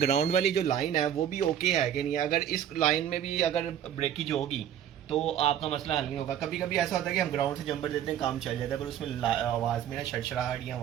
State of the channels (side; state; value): left; quieter; 10.2 dB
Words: वाली जो लाइन है वो भी ओके है कि नहीं। अगर इस लाइन में भी अगर ब्रेकेज होगी तो आपका मसला हल नहीं होगा। कभी कभी ऐसा होता है कि हम ग्राउंड से जंपर देते हैं, काम चल जाता है, पर उसमें आवाज़ में ना शड़शड़ाहट या